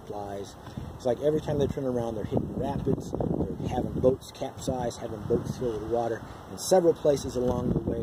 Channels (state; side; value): identical; both; correlation 1.00